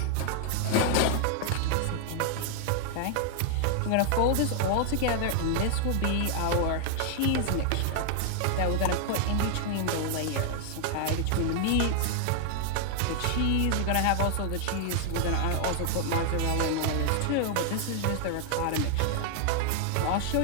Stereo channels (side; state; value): both; different; correlation 0.00